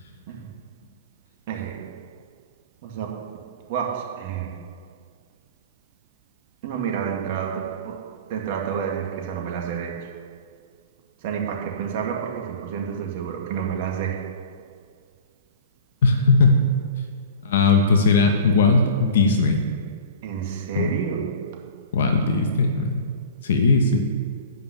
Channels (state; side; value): inverted; both; correlation -0.39